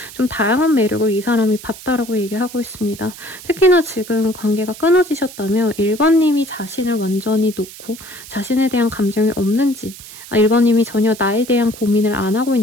좀 다양한 매력을 이 사람이 봤다라고 얘기하고 있습니다. 특히나 지금 관계가 끊어지셨다면 1번님이 자신을 완전히 놓고 자신에 대한 감정이 없는지 1번님이 전혀 나에 대한 고민을 안 하고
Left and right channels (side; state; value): right; noise; hiss, 16 dB below the sound